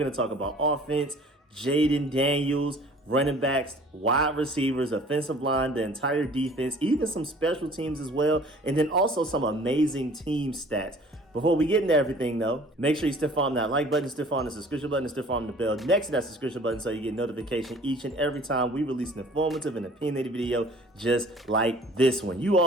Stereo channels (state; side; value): normal; both; correlation 0.50